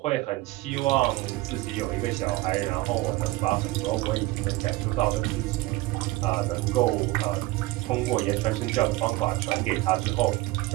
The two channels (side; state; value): left; quieter; 19.7 dB